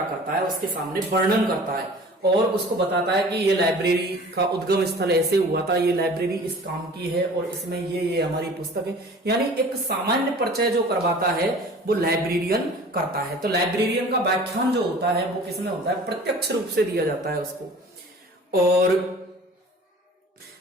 करता है, उसके सामने वर्णन करता है और उसको बताता है कि ये लाइब्रेरी का उद्गम स्थल ऐसे हुआ था, ये लाइब्रेरी इस काम की है और इसमें ये हमारी पुस्तक है। यानी एक सामान्य परिचय जो करवाता है वो लाइब्रेरियन करता है। तो लाइब्रेरियन का व्याख्यान जो होता है वो किसमें होता है? प्रत्यक्ष रूप से दिया जाता है उसको। और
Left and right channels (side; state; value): both; normal; correlation 0.44